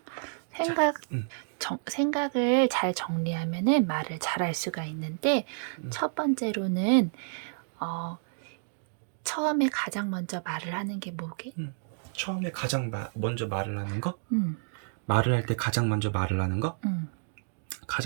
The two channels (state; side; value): silent; left; digital silence